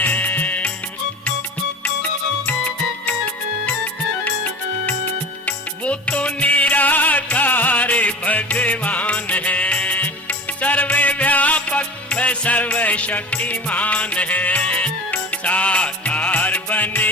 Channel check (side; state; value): both; normal; correlation 0.36